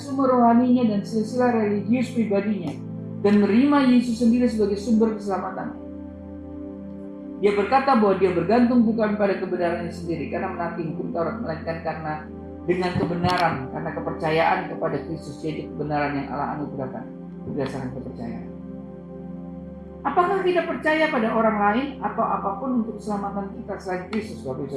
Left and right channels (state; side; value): identical; both; correlation 1.00